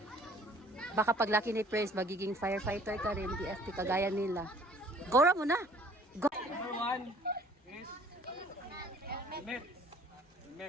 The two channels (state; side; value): normal; both; correlation 0.54